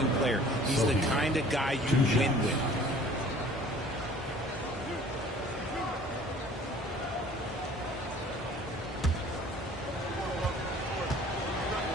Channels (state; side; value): normal; both; correlation 0.50